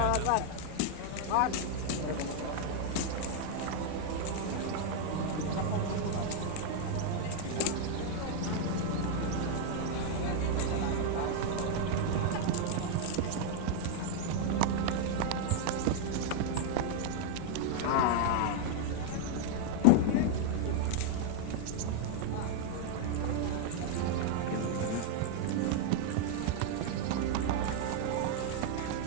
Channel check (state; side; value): different; both; correlation 0.00